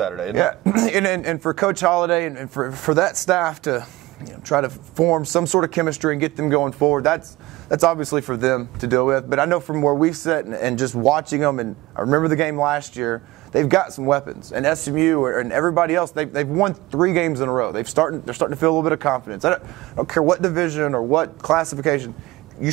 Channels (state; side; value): quieter; left; 19.3 dB